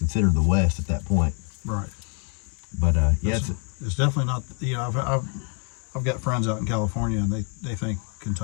the West at that point. Right. But it's definitely not. I've got friends out in California, and they think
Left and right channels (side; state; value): right; quieter; 38.3 dB